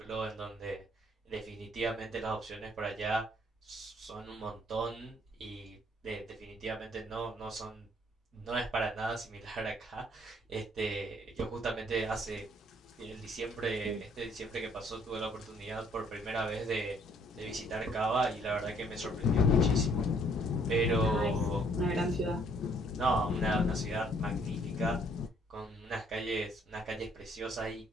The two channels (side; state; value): both; normal; correlation 0.63